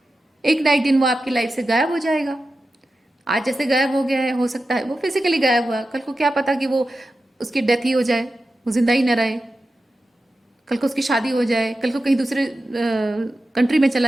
एक ना एक दिन वो आपकी लाइफ से गायब हो जाएगा। आज जैसे गायब हो गया है, हो सकता है वो फिजिकली गायब हुआ, कल को क्या पता कि वो उसकी डेथ ही हो जाए, वो जिंदा ही न रहे, कल को उसकी शादी हो जाए, कल को कहीं दूसरे कंट्री में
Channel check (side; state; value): both; normal; correlation 0.92